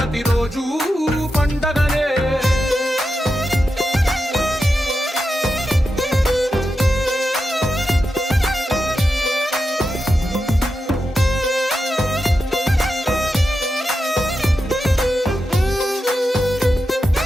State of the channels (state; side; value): normal; both; correlation 0.89